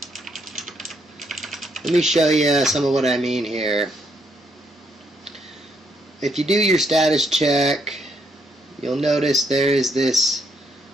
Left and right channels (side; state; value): both; normal; correlation 0.74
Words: Let me show you some of what I mean here. If you do your status check, you'll notice there is this